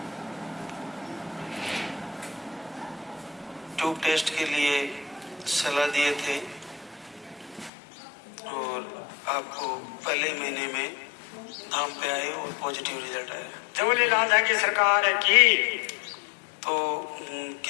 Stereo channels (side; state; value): right; drops out; at 7.7 s